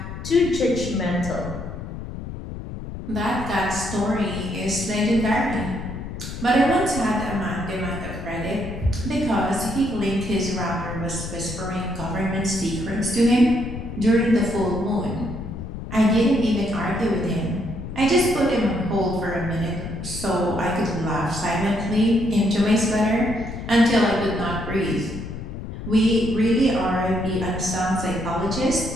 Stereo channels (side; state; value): left; noise; rumble, 8 dB below the sound